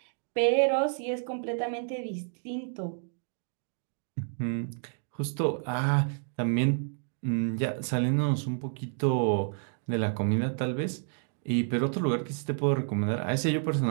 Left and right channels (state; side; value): silent; left; digital silence